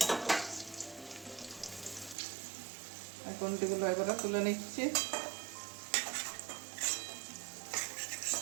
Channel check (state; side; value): drops out; left; at 2.1 s